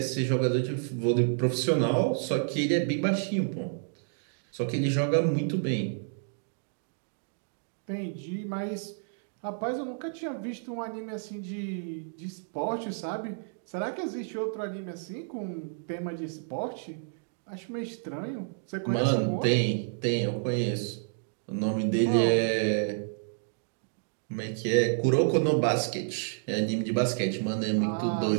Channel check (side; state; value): left; silent; digital silence